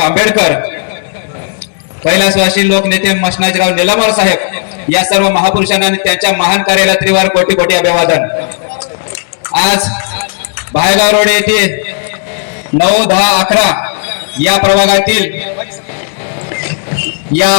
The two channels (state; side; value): silent; right; digital silence